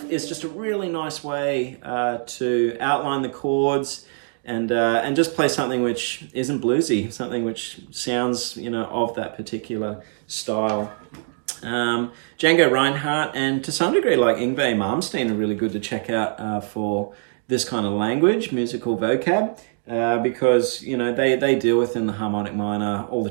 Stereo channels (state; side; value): silent; left; 60 dB below the other